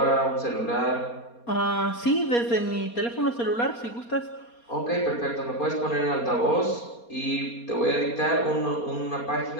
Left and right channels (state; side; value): late; right; 4.2 ms